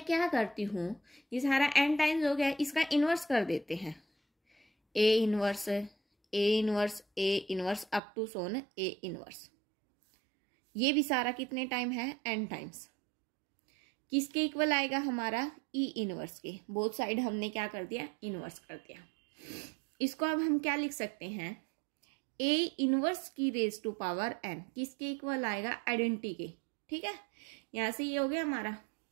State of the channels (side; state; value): left; drops out; at 8.0 s